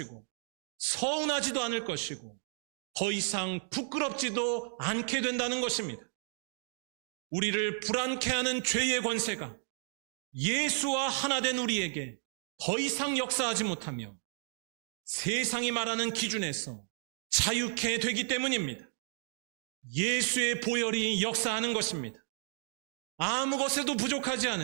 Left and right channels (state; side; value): silent; left; 56 dB below the other